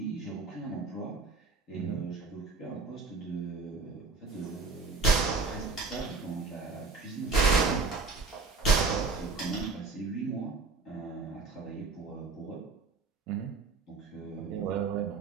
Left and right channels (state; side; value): quieter; left; 4.1 dB